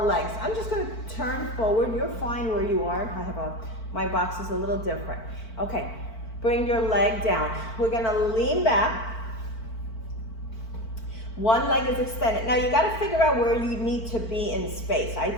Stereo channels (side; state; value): right; late; 4.5 ms